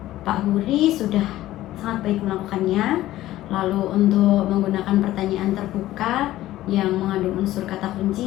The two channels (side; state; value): right; quieter; 15.0 dB